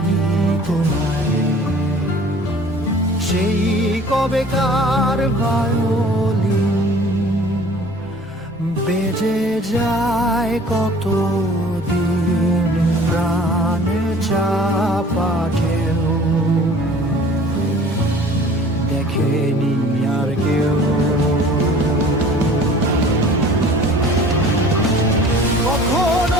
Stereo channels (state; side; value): normal; both; correlation 0.48